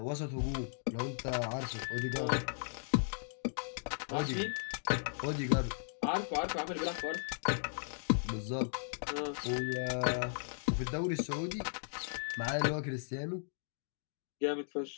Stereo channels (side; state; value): right; silent; digital silence